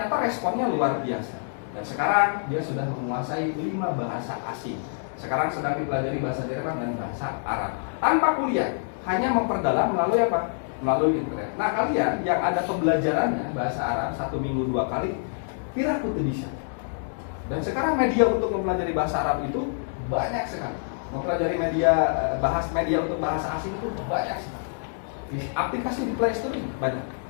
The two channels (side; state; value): right; silent; digital silence